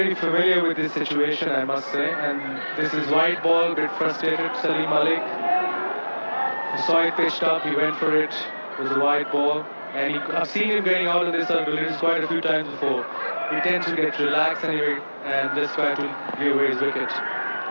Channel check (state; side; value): inverted; both; correlation -1.00